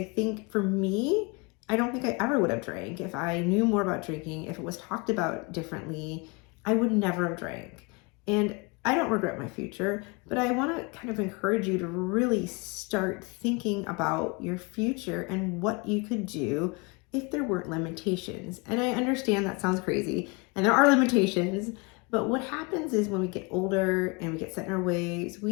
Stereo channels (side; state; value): right; quieter; 28.8 dB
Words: think for me, I don't think I ever would have drank. If I knew more about drinking, if it was talked about differently, I would never have drank. And I don't regret my future, but I want to kind of encourage you to really start thinking about your future and what you could do if there weren't limitations. And I understand that sounds crazy, and there are limitations, but what happens is when we get older and we get set in our ways,